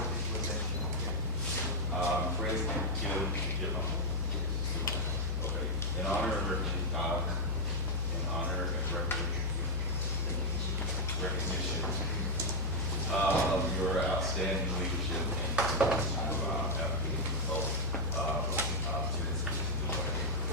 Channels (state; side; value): normal; both; correlation -0.01